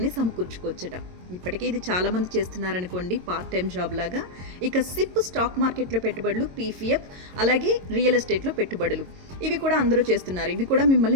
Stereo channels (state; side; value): late; left; 22 ms